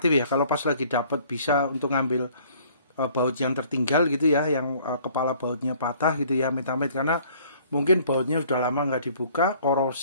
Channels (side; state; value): both; inverted; correlation -0.56